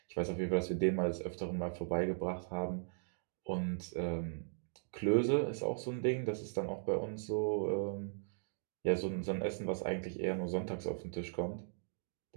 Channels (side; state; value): left; silent; digital silence